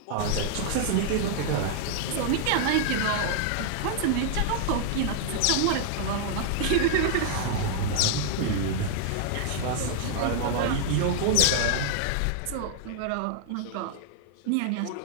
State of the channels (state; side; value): different; both; correlation -0.01